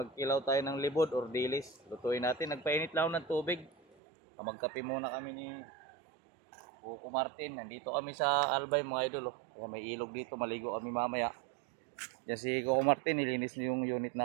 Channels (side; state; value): left; drops out; at 4.0 s